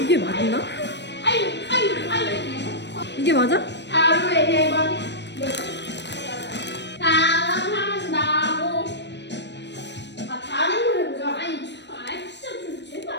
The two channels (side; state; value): right; late; 0.51 ms